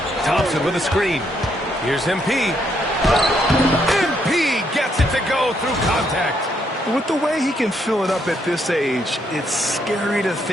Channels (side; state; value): both; normal; correlation 0.74